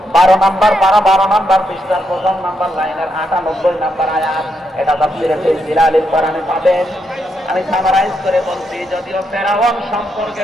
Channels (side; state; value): both; normal; correlation 0.80